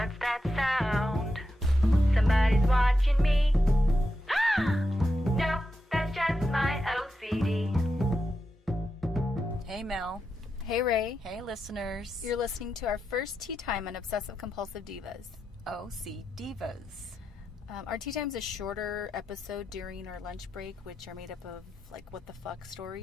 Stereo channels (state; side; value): normal; both; correlation 0.87